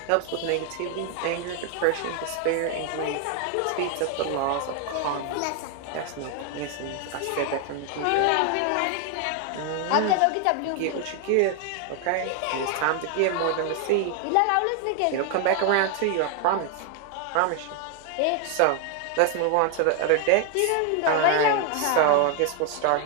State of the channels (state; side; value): different; both; correlation 0.00